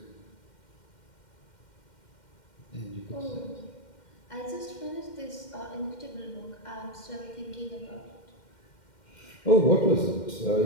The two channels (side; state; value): right; late; 2.1 ms